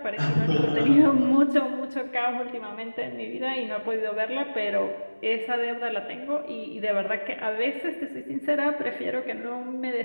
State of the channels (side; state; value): both; inverted; correlation -1.00